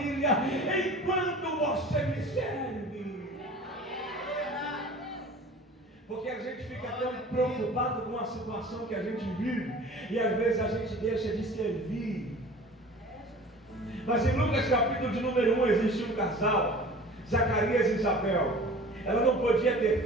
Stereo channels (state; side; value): normal; both; correlation 0.43